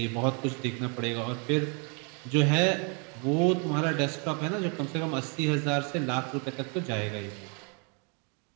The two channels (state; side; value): quieter; left; 35.4 dB